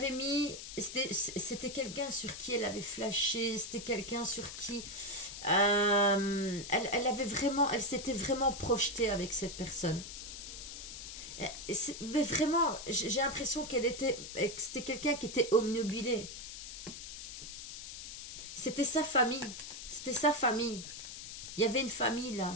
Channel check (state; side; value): noise; left; hiss, 10 dB below the sound